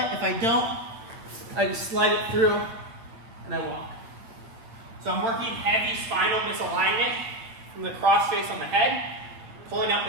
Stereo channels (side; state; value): left; late; 8.7 ms